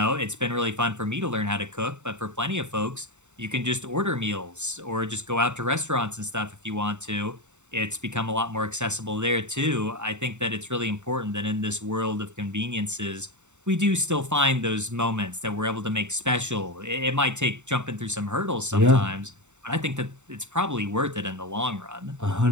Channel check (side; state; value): left; late; 0.84 ms